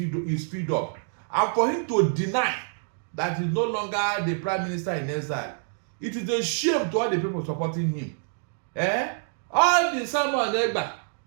up. And for him to deny that he's no longer the prime minister in exile, it is a shame to all the people supporting him. All the Simon Ekpa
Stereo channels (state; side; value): silent; left; 60 dB below the other